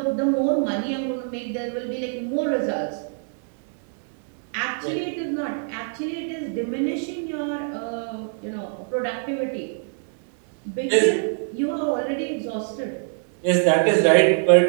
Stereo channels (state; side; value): silent; left; 62 dB below the other